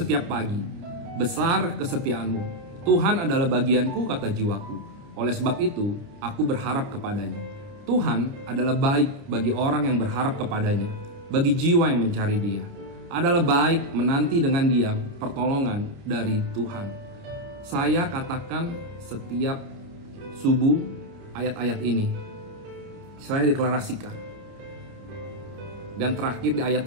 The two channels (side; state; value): left; late; 29 ms